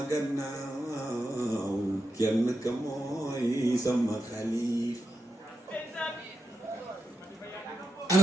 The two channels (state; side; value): normal; both; correlation 0.87